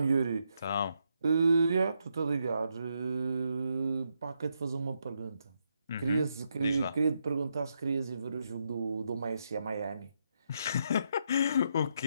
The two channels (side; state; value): both; inverted; correlation -0.80